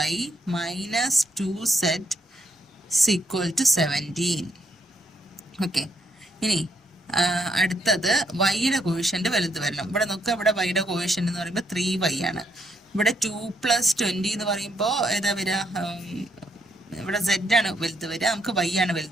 minus 2z equal to 17. Okay, ഇനി അടുത്തത് വൈയുടെ കോഷ്യൻ്റ് വലുത് വരണം. ഇവിടെ നോക്കുക, ഇവിടെ വൈയുടെ കോഷ്യൻ്റ് എന്ന് പറയുമ്പോൾ 3y ആണ്. ഇവിടെ 2 + 20 എന്ന് പറയുമ്പോൾ ഏതാ വരിക, ഇവിടെ z ആണ് വലുത് വരിക, നമുക്ക് y ആണ്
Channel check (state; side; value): normal; both; correlation 0.76